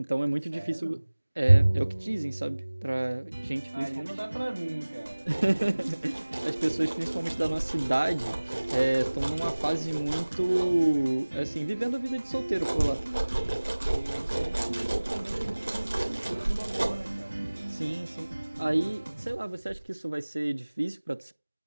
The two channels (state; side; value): inverted; both; correlation -1.00